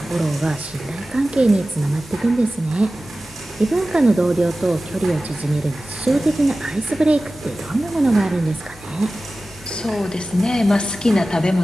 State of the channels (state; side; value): normal; both; correlation 0.96